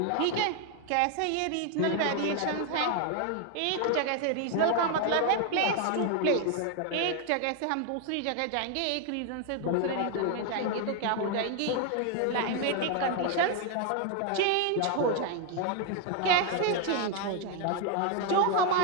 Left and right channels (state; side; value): different; both; correlation 0.01